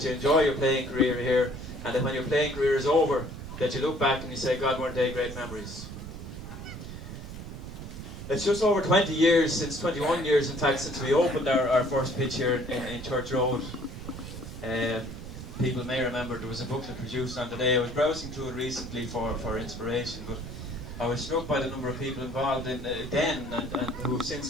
you enjoy your playing career here, and that when your playing career is over, that you look back and you say, God, weren't they great memories. It's just over 20 years, 21 years in fact, since we opened our first pitch here in Church Road. People may remember there was a booklet produced on the day. I was browsing through it recently for inspiration, but I was struck by the number of people involved in then and who have since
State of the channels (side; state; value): right; noise; rumble, 10 dB below the sound